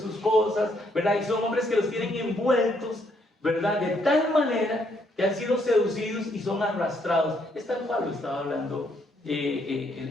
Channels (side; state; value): both; normal; correlation 0.72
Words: cosas, ¿verdad? Y son hombres que los tienen envueltos, ¿verdad?, de tal manera que han sido seducidos y son arrastrados. Es tal cual lo estaba hablando